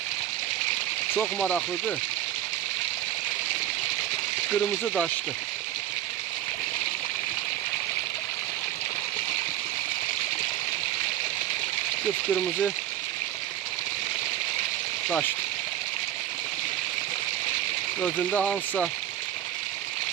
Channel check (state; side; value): quieter; left; 12.3 dB